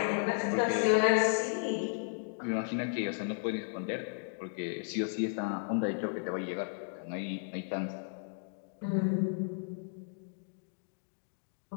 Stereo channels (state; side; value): silent; right; digital silence